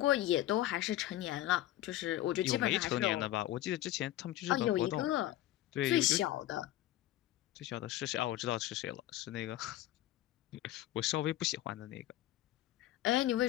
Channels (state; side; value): quieter; right; 14.5 dB